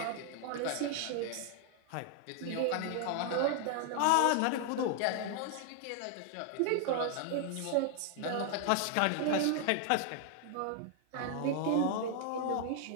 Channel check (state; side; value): different; both; correlation 0.00